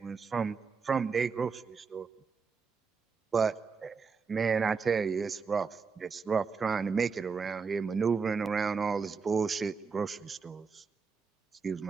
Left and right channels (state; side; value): quieter; left; 5.3 dB